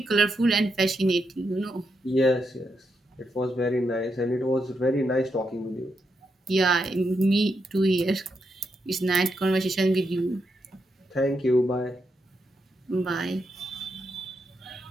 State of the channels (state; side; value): normal; both; correlation 0.82